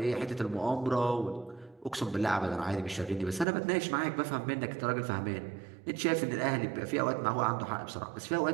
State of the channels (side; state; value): left; drops out; at 3.5 s